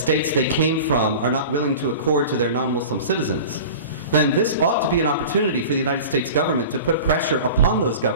they came from are not willing to accord to their non-Muslim citizens, then this ought to be an opportunity for the United States government to put pressure upon those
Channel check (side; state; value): both; inverted; correlation -0.37